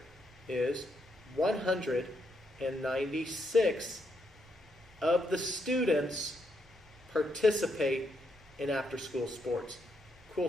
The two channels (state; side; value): normal; both; correlation 0.78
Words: is 196 of the students participate in after-school sports. Cool